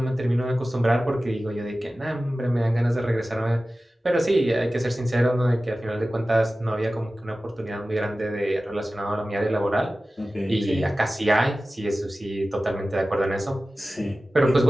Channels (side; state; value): both; normal; correlation 0.96